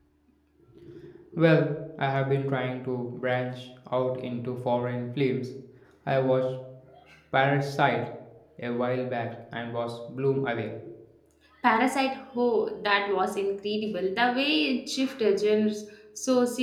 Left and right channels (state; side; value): identical; both; correlation 1.00